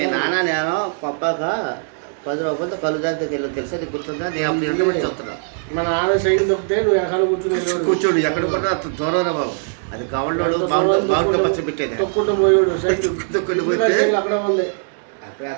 నాన్న నేను పప్పాక 10 రూపాయలతో కళ్ళు దాంతో వెళ్ళి తెలుసా నీకు గుర్తుందా? నేను అప్పుడు ఇంటి పెట్టి చూస్తున్నా. మా నాన్న సైకిల్ తప్పితే నువ్వు ఎక్కడ కూర్చోడు ఎక్కడ కూడా అంత దూరం బాబు. అది గవర్నోడు బాగుంటే పచ్చ పెట్టేది తొక్కుంటూ పోయాడు సైకిల్ తొక్కుని పోతే అక్కడ ఉంది. అప్పుడే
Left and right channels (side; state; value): left; silent; digital silence